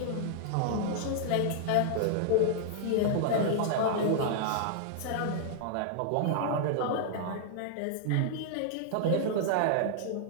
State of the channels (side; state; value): both; different; correlation -0.01